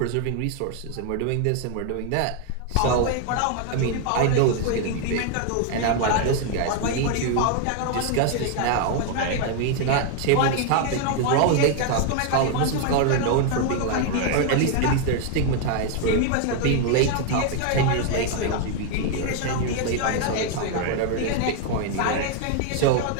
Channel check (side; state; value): both; different; correlation 0.00